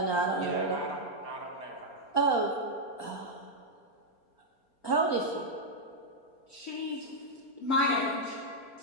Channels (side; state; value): right; late; 4.3 ms